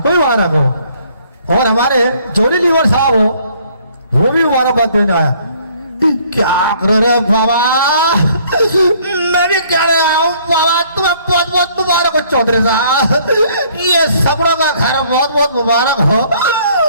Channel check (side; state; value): both; inverted; correlation -0.61